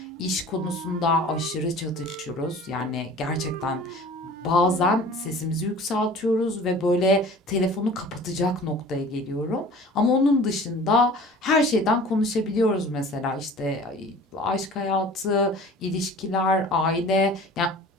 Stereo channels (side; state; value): both; normal; correlation 0.44